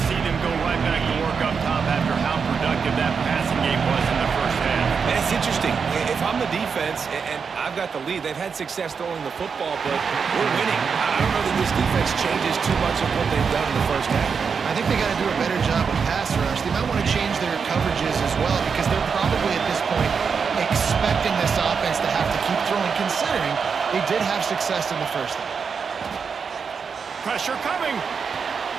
see them go right back to work up top after how productive that passing game was in the 1st half. And it's interesting. If I'm the defense and I've got the lead, they've had success throwing the football, but we're winning. I don't know that this defense changes too much of what they've done in the 1st half. I think they got to do a better job with pass rush. They might want to change their coverages as well because they're probably at this point expecting this offense to have to keep throwing, considering they did have success in the 1st half. Pressure coming.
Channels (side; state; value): left; quieter; 5.9 dB